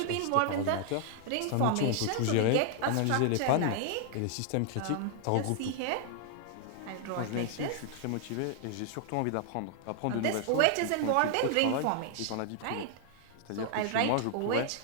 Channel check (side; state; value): both; different; correlation 0.00